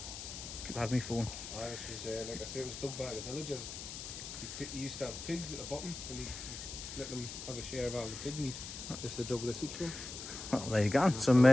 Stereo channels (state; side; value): noise; left; hiss, 9 dB below the sound